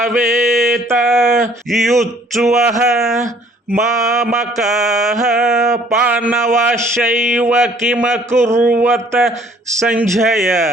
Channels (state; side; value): normal; both; correlation 0.58